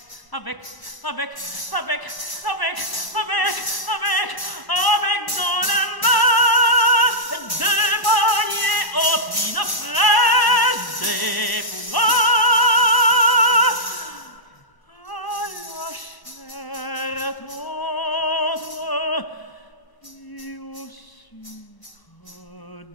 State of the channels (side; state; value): right; late; 1.0 ms